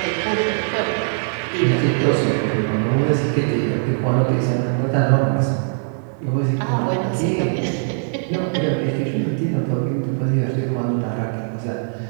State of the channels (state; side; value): silent; left; digital silence